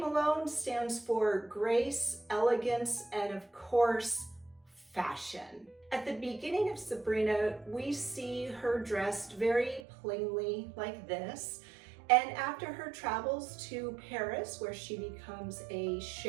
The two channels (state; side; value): drops out; left; at 9.8 s